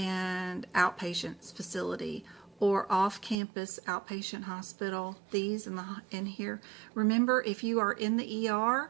outpatient facility, or off-campus outpatient hospital. These in here. Remember, if you are in the ER,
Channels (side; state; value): left; drops out; at 3.4 s